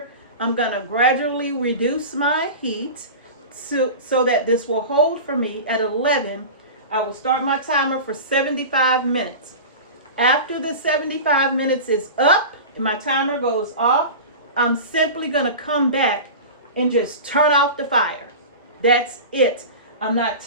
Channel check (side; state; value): both; inverted; correlation -0.31